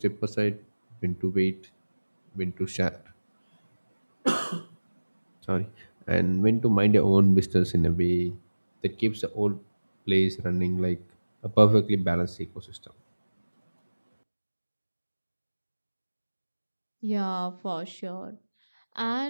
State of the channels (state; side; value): inverted; both; correlation -1.00